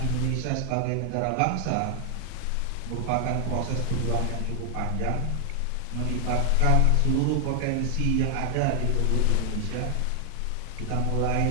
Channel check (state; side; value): different; both; correlation 0.00